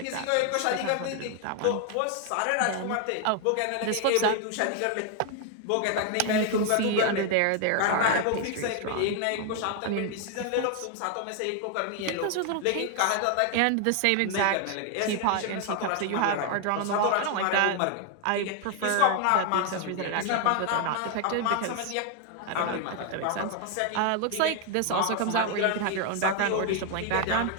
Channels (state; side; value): different; both; correlation 0.00